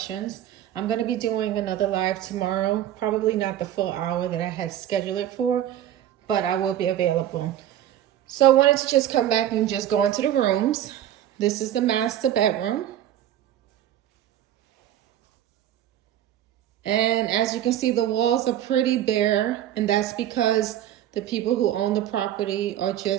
I'm going to be doing another live tomorrow, probably not the full hour that I had scheduled it for, but I will be available. So I wanted to just come back and just go into the rooms. This is the master bedroom. And as you can see, the walls are pretty bare, and that's because the people who own the property are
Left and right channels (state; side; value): quieter; left; 11.7 dB